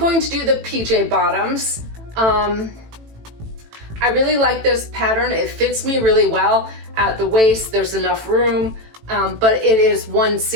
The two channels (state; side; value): late; left; 18 ms